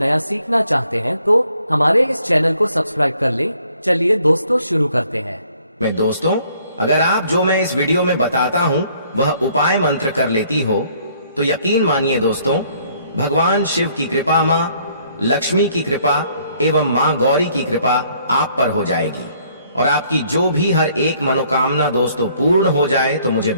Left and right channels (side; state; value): both; inverted; correlation -0.64